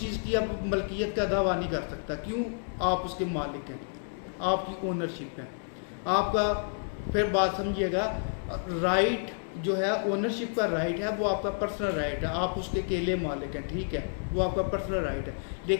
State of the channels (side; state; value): right; silent; digital silence